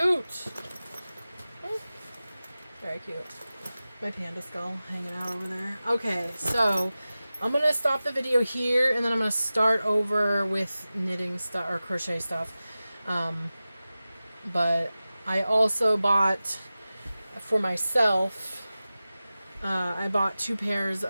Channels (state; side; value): inverted; both; correlation -0.96